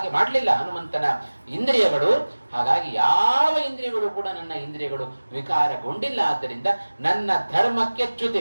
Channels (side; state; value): both; inverted; correlation -1.00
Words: ಮಾಡಲಿಲ್ಲ ಹನುಮಂತನ ಇಂದ್ರಿಯಗಳು. ಹಾಗಾಗಿ ಯಾವ ಇಂದ್ರಿಯಗಳು ಕೂಡ ನನ್ನ ಇಂದ್ರಿಯಗಳು ವಿಕಾರಗೊಂಡಿಲ್ಲ. ಆದ್ದರಿಂದ ನನ್ನ ಧರ್ಮಕ್ಕೆ